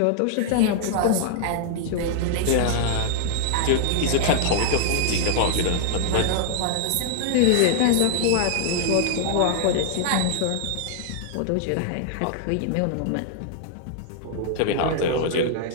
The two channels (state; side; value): different; both; correlation -0.01